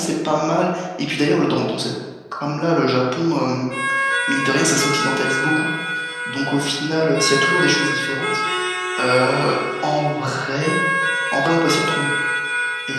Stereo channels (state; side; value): identical; both; correlation 1.00